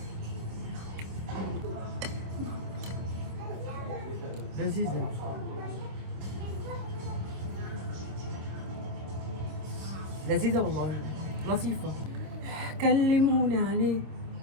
لذيذة، لذيذة والله، لطيفة. كلموني عليه،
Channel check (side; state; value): left; late; 26 ms